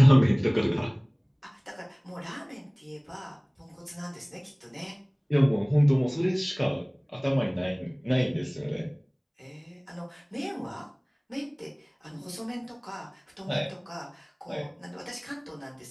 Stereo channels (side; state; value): both; identical; correlation 1.00